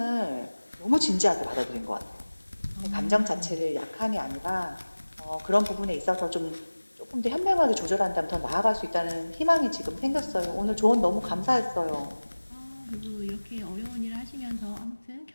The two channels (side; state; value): both; inverted; correlation -1.00